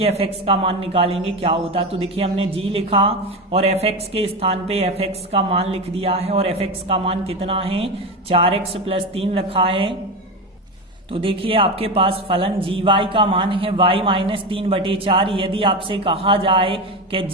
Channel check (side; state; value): both; normal; correlation 0.19